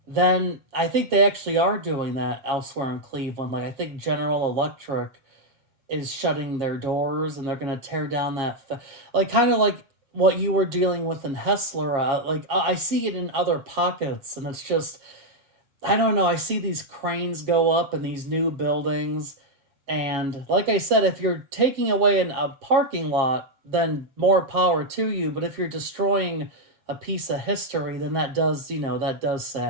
then I think they actually are doing that elsewhere in Cleveland. Like I think General Electric is shutting their doors and they're going to tear down like kind of like what you were dealing with in Hessler. Like I see it in other pockets, and it's just I don't know. I see these cranes go up in these new buildings, and like I said, if you're taking away a parking lot, then more power to you. But if you're destroying a piece of history, then that does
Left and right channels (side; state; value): left; late; 7.4 ms